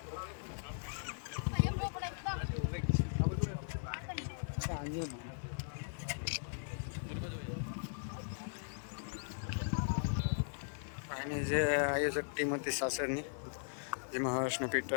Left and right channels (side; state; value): right; silent; digital silence